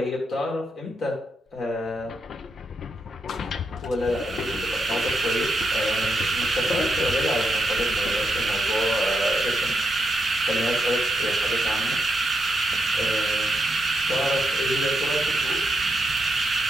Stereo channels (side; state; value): both; normal; correlation 0.83